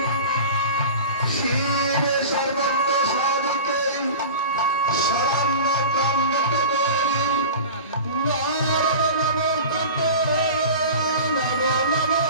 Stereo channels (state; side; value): inverted; both; correlation -0.34